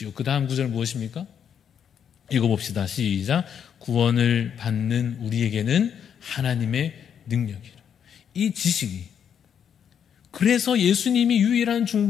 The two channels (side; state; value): right; quieter; 8.2 dB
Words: 그 다음 구절 무엇입니까? 읽어봅시다. 시작. 구원을 받는 우리에게는 하나님의 능력이라. 이 지식이, 그래서 예수님이 유일한